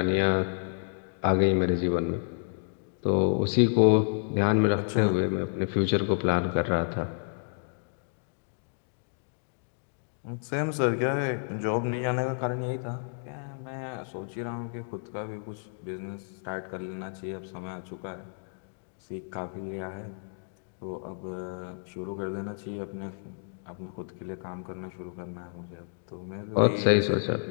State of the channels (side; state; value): right; silent; digital silence